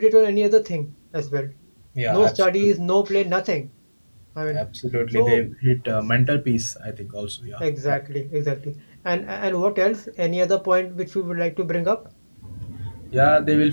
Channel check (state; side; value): inverted; both; correlation -1.00